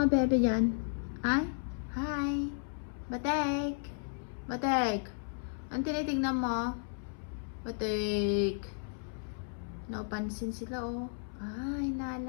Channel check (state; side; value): silent; right; 55 dB below the other